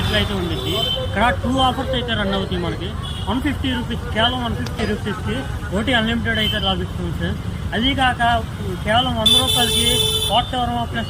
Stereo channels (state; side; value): identical; both; correlation 1.00